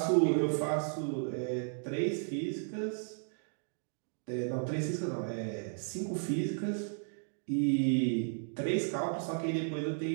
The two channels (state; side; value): silent; left; digital silence